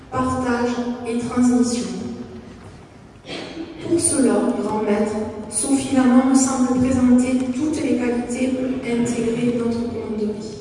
partage et transmission. Pour cela, grand maître, Sophie Laman me semble présenter toutes les qualités pour intégrer notre commanderie.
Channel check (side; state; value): both; identical; correlation 1.00